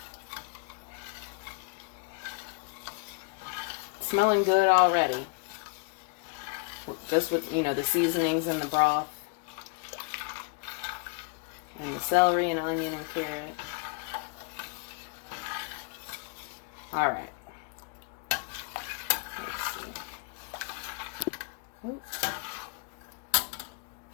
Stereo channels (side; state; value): right; quieter; 33.7 dB